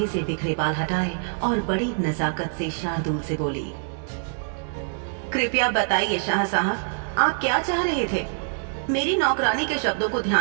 से बिखरे बाल हटाए और बड़ी नजाकत से शार्दुल से बोली, कृपया बताइए शाह साहब, आप क्या चाह रहे थे? मेरी नौकरानी के शब्दों को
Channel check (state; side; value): silent; left; digital silence